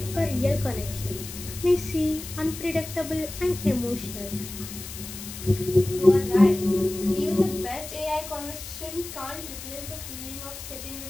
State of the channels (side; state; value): left; noise; hiss, 11 dB below the sound